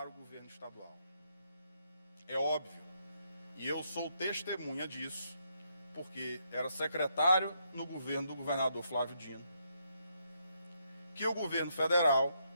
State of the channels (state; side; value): inverted; both; correlation -0.77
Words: o governo estadual. É óbvio, e eu sou testemunha disso, porque era secretário no governo do governador Flávio Dino, que o governo federal